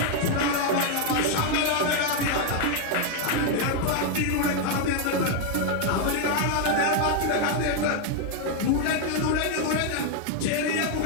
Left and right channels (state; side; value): different; both; correlation 0.00